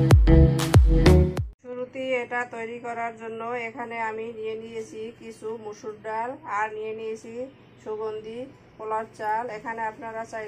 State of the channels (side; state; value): both; identical; correlation 1.00